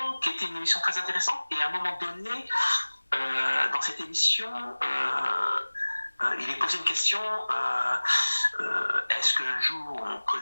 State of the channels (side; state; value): both; inverted; correlation -1.00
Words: qui était une émission très intéressante. Et à un moment donné, dans cette émission, il est posé une question, est-ce qu'un jour on